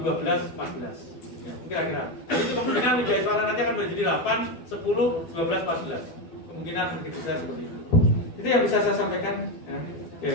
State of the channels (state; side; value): late; right; 12 ms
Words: 12, 14. Ya, kira-kira. Itu kemungkinan Widya Iswara nanti akan menjadi 8, 10, 12, 14. Kemungkinan prediksi saya seperti itu. Itu yang bisa saya sampaikan. Ya.